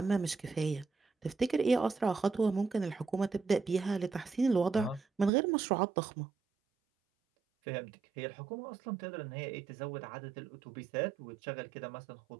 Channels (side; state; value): left; drops out; at 5.3 s